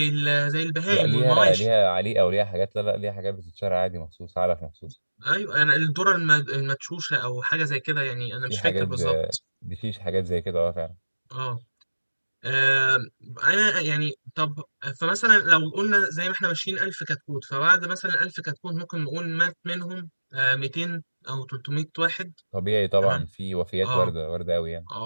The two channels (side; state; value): both; inverted; correlation -1.00